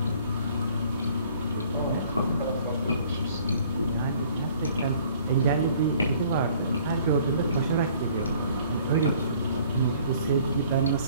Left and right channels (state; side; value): inverted; both; correlation -0.56